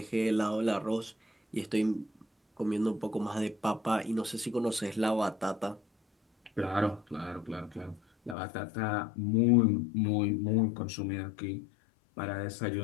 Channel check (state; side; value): drops out; right; at 8.3 s